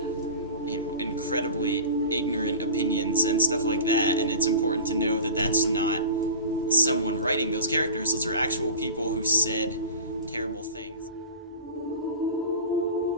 incredibly ignorant opinions and stuff like that, and it's important to know that that's not someone writing those characters. Those are actual people who said terrible things.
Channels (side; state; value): both; inverted; correlation -0.34